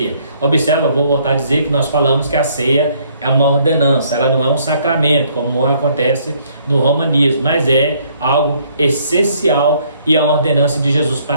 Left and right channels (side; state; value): both; inverted; correlation -0.64